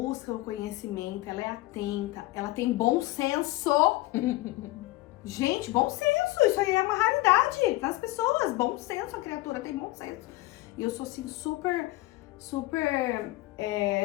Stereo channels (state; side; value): quieter; right; 19.0 dB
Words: o conhecimento, ela é atenta, ela tem bom senso. Gente, bom senso, isso aí é uma raridade nas pessoas. Bom senso, a criatura tem bom senso. E eu sou assim super